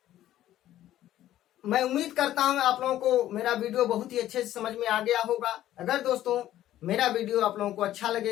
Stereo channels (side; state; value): right; quieter; 13.1 dB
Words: मैं उम्मीद करता हूं आप लोगों को मेरा वीडियो बहुत ही अच्छे से समझ में आ गया होगा। अगर दोस्तों मेरा वीडियो आप लोगों को अच्छा